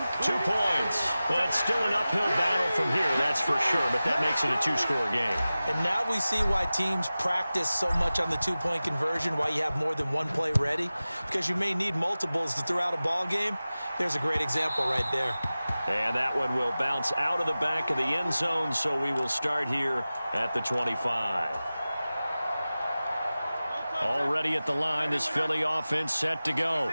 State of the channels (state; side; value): inverted; both; correlation -0.96